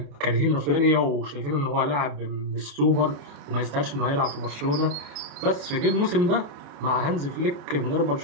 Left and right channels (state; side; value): late; left; 28 ms